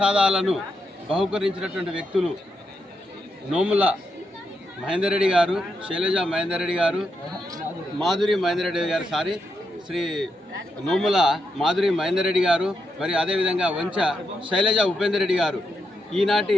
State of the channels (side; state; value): both; normal; correlation 0.83